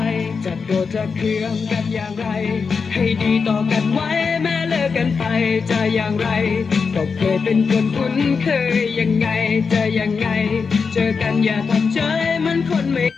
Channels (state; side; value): quieter; right; 5.3 dB